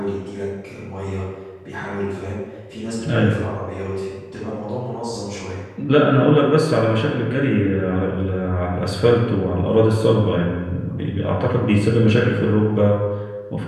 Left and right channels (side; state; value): both; identical; correlation 1.00